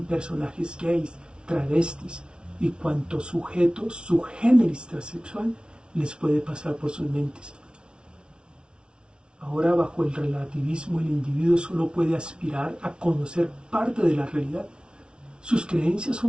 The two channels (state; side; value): late; left; 0.056 ms